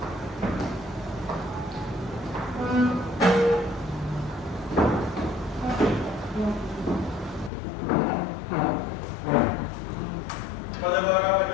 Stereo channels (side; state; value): right; drops out; at 7.5 s